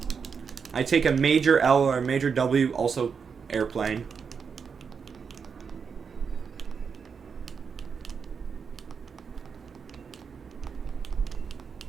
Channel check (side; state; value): left; quieter; 6.0 dB